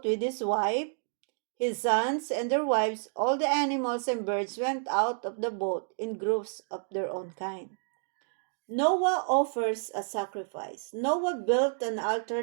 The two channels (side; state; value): left; silent; digital silence